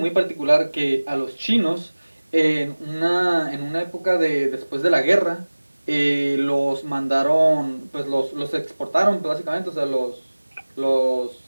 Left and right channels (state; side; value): inverted; both; correlation -1.00